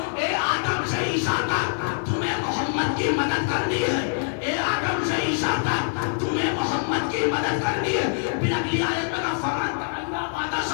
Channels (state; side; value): silent; right; 60 dB below the other